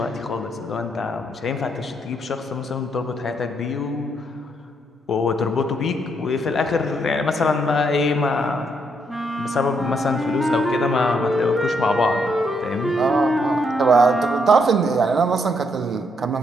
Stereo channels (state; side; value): normal; both; correlation 0.75